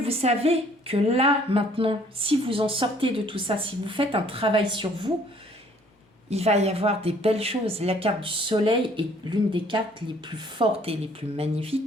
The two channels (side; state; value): both; normal; correlation 0.59